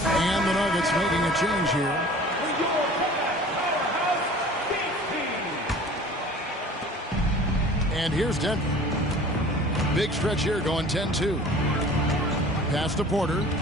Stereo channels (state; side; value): normal; both; correlation 0.45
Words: And the Nuggets making a change here. And here's Denver. Big stretch here going 10-2. Pass to Porter.